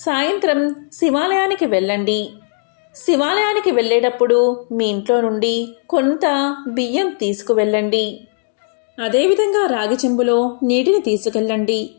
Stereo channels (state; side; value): silent; right; 57 dB below the other